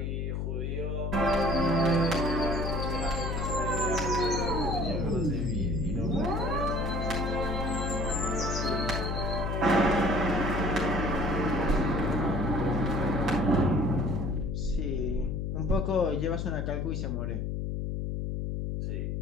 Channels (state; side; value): noise; left; hum, 1 dB below the sound